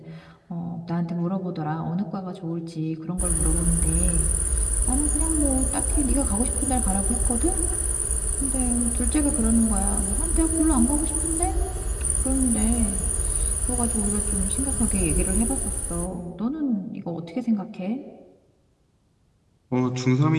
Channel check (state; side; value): identical; both; correlation 1.00